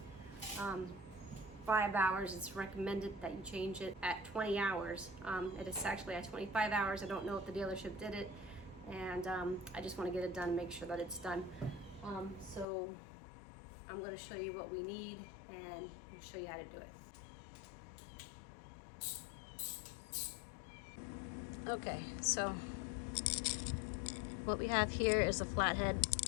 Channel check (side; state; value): right; drops out; at 12.7 s